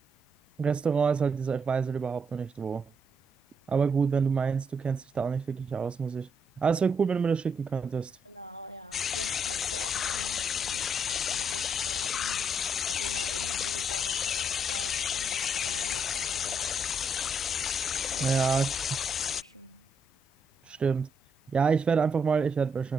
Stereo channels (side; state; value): both; normal; correlation 0.77